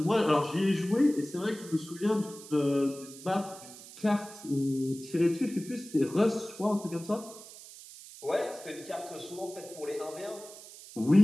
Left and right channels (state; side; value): noise; right; hiss, 16 dB below the sound